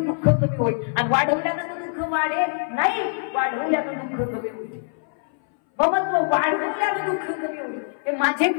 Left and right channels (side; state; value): right; silent; 61 dB below the other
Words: कमी होईल आणि वाढवल्यानं दुःख वाढेल. नाही, वाढवल्यानं दुःख कमी होईल. ममत्व वाढवल्यानं दुःख कमी होईल. हे